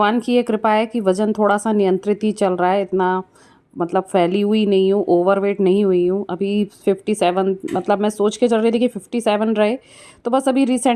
की ये कृपा है कि वज़न थोड़ा सा नियंत्रित ही चल रहा है। इतना मतलब फैली हुई नहीं हूँ, ओवरवेट नहीं हुई हूँ। अभी 57 मतलब मैं सोच के चल रही थी कि 57 रहे, तो बस अभी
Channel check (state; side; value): identical; both; correlation 1.00